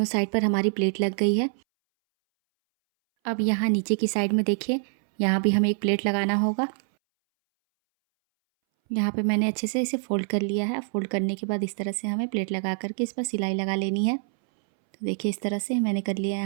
साइड पर हमारी प्लेट लग गई है। अब यहाँ नीचे की साइड में देखिए, यहाँ भी हमें एक प्लेट लगाना होगा। यहाँ पे मैंने अच्छे से इसे फोल्ड कर लिया है। फोल्ड करने के बाद इस तरह से हमें प्लेट लगा करके इस पर सिलाई लगा लेनी है। तो देखिए इस तरह से मैंने कर लिया है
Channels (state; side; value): silent; left; 61 dB below the other